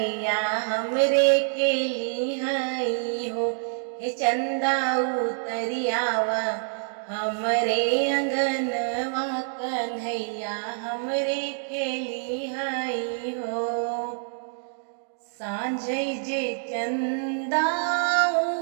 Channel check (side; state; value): left; silent; digital silence